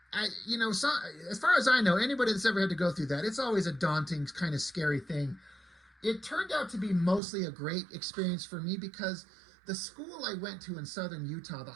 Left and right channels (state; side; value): drops out; left; at 7.2 s